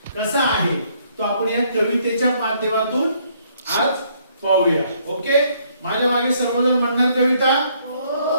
कसा आहे तो आपण या कवितेच्या माध्यमातून आज पाहूया. ओके, माझ्या मागे सर्वजण म्हणणार कविता?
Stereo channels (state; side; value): inverted; both; correlation -0.67